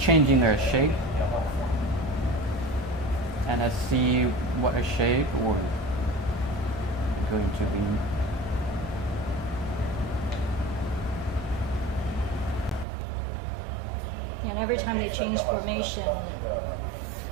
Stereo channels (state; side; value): drops out; left; at 12.9 s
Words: their shape. And let's see what a shape or going to be. And every time they change formation